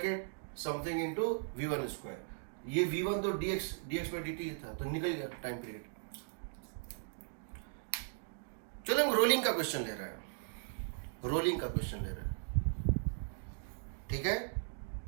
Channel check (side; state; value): left; silent; digital silence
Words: something into v1 square. ये v1 तो dx/dt था, तो निकल गया टाइम पीरियड। चलो हम रोलिंग का क्वेश्चन ले रहे हैं, रोलिंग का क्वेश्चन ले रहे हैं, ठीक है।